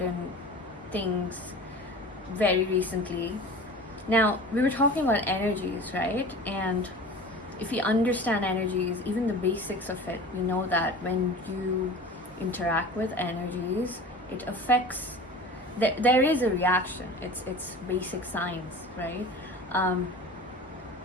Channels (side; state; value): both; normal; correlation 0.37